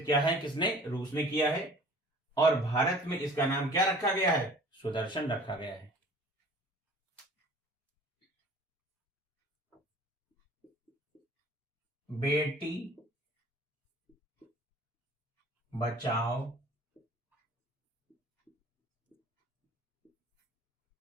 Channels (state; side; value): normal; both; correlation 0.48